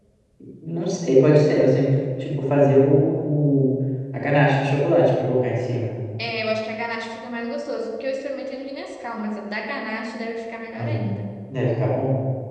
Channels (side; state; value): both; identical; correlation 1.00